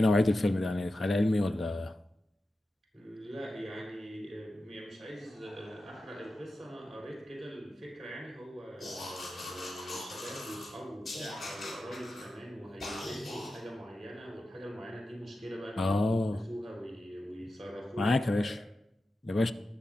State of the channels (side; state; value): both; normal; correlation 0.92